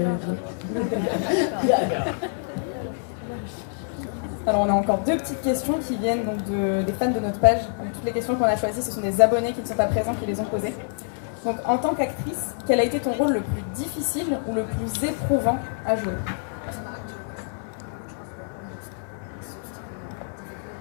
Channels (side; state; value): right; silent; digital silence